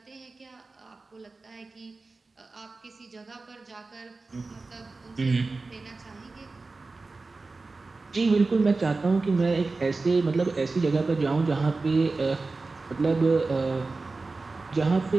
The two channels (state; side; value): quieter; left; 3.7 dB